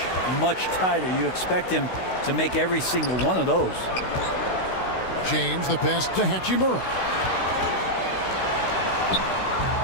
tighter. You expect him to make every single one of those. James, the pass to Hachimura.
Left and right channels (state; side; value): late; right; 16 ms